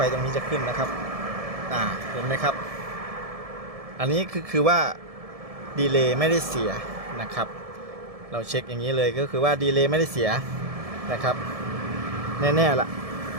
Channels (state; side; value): late; left; 1.7 ms